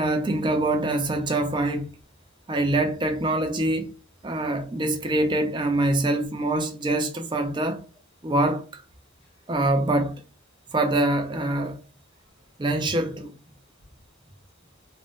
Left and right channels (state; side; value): normal; both; correlation 0.53